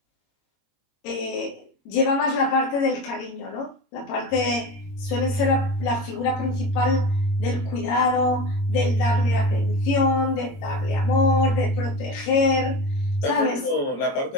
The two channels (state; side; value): late; right; 22 ms